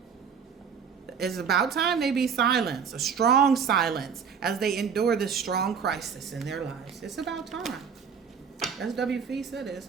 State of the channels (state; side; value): quieter; left; 6.7 dB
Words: It's about time they be silenced, a strong silence, as they endure this strong crisis in their lives. It's about time. As WFE said, it's